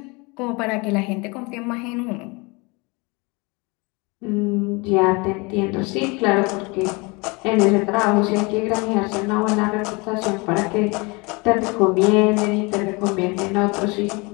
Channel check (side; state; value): right; quieter; 27.4 dB